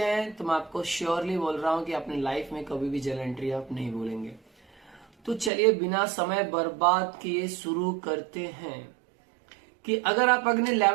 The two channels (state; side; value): drops out; left; at 5.5 s